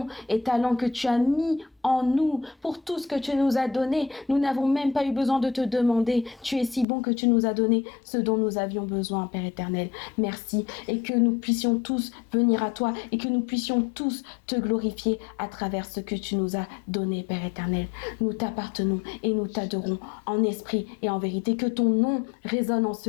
et talents que tu as mis en nous, pour tout ce que tu nous as donné. Nous n'avons même pas eu besoin de te demander. Tu es si bon que tu nous as donné ce dont nous avions besoin, Père éternel. Merci. Et que nous puissions tous venir à toi et que nous puissions tous te glorifier à travers ce que tu nous as donné, Père éternel. Nous t'appartenons et nous t'adorons en esprit et en vérité. Que ton nom résonne en ce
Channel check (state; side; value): drops out; right; at 6.9 s